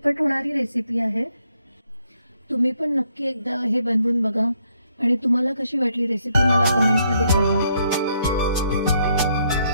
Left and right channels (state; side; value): inverted; both; correlation -0.73